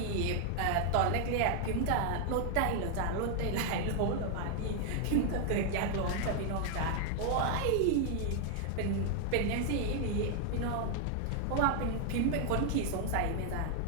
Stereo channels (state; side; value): different; both; correlation 0.00